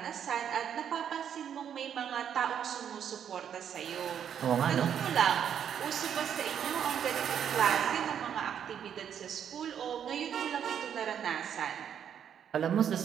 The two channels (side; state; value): left; quieter; 8.7 dB